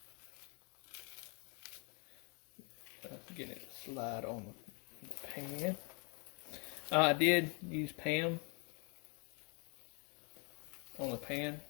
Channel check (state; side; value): quieter; right; 35.1 dB